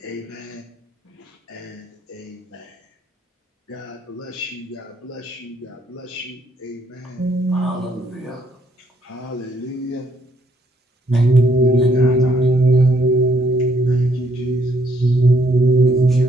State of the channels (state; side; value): normal; both; correlation 0.69